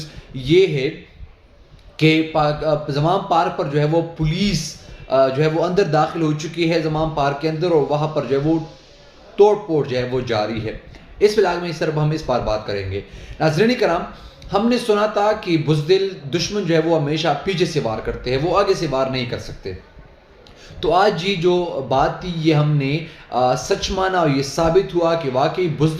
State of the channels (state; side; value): identical; both; correlation 1.00